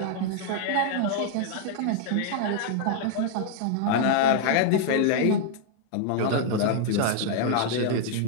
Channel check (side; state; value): both; different; correlation -0.01